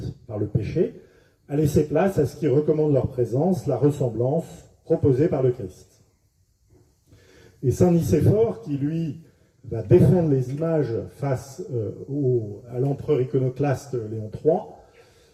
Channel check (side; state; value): both; identical; correlation 1.00